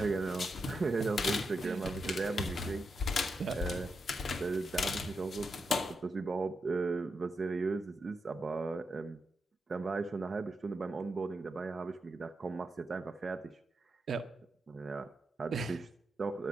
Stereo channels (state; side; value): normal; both; correlation 0.86